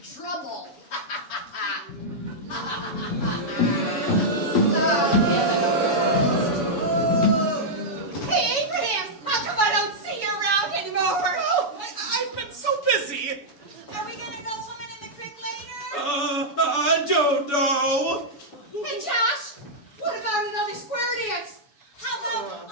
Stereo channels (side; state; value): right; late; 7.0 ms